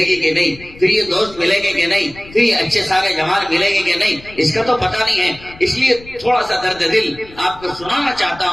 گی کہ نہیں، پھر یہ دوست ملیں گے کہ نہیں، پھر یہ اچھے سارے جوان ملیں گے کہ نہیں، اس کا تو پتہ نہیں ہے۔ اس لیے تھوڑا سا درد دل آپ کو سنانا چاہتا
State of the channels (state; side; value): noise; left; rumble, 21 dB below the sound